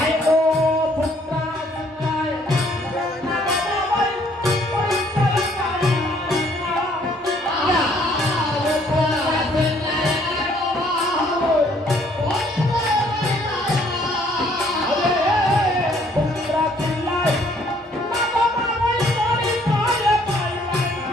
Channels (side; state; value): both; normal; correlation 0.63